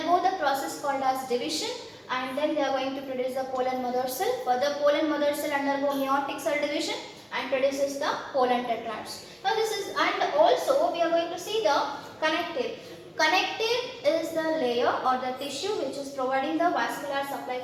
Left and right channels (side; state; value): both; identical; correlation 1.00